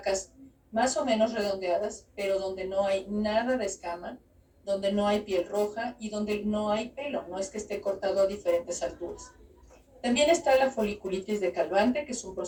más o menos redondeadas, pero donde no hay nada de escama, donde no hay piel roja y donde no hay pelo, no es que esté cortado a diferentes alturas. También está la foliculitis decalvante, que es un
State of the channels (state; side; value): identical; both; correlation 1.00